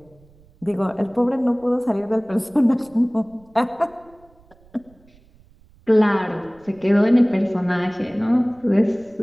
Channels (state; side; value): noise; right; rumble, 29 dB below the sound